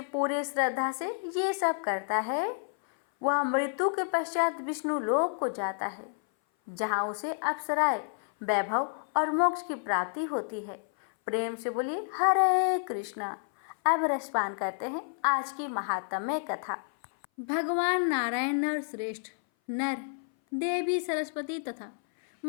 पूरे श्रद्धा से ये सब करता है, वह मृत्यु के पश्चात विष्णु लोक को जाता है, जहाँ उसे अप्सराएं, वैभव और मोक्ष की प्राप्ति होती है। प्रेम से बोलिए हरे कृष्णा। अब रसपान करते हैं आज की महात्म्य कथा। भगवान नारायण नर श्रेष्ठ, नर देवी सरस्वती तथा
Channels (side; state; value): right; silent; 57 dB below the other